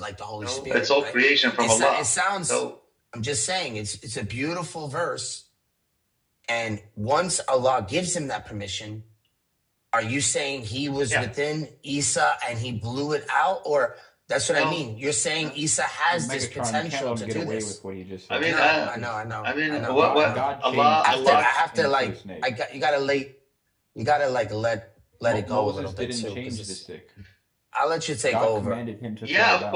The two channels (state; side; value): identical; both; correlation 1.00